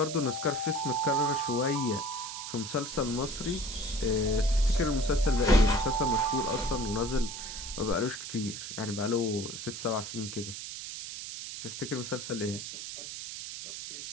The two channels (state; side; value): noise; right; hiss, 8 dB below the sound